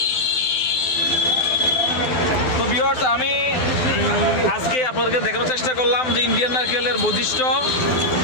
তো ভিউয়ার্স, আমি আজকে আপনাদেরকে দেখানোর চেষ্টা করলাম যে ইন্ডিয়ান নারকেলের বৈশিষ্ট্য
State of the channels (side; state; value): right; late; 12 ms